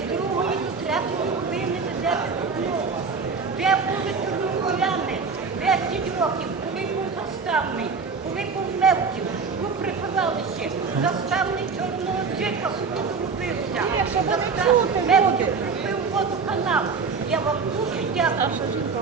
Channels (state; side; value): quieter; left; 5.1 dB